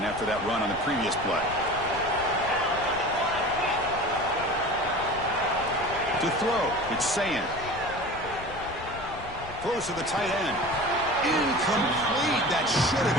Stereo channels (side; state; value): left; noise; rumble, 15 dB below the sound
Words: after that run on the previous play. To throw, it's Sayin. Throws to the tight end. Incomplete. That should have